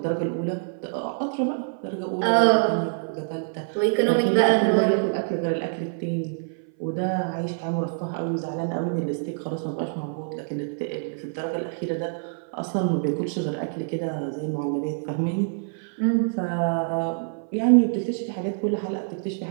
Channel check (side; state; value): left; silent; 58 dB below the other